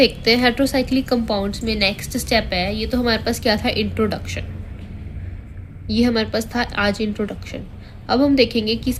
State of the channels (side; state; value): both; identical; correlation 1.00